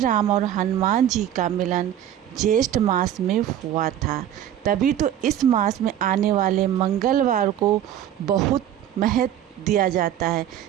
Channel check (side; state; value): left; quieter; 11.0 dB